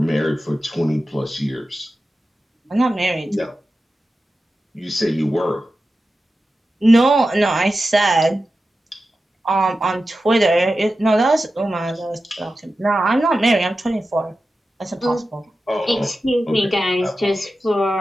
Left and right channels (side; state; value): both; normal; correlation 0.93